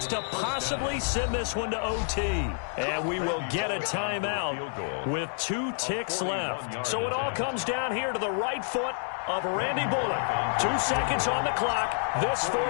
to possibly send this one to OT. And we will get a timeout with 2 ticks left. So it all comes down here to the right foot of Randy Bullock. 2 seconds on the clock. This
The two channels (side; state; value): right; silent; 59 dB below the other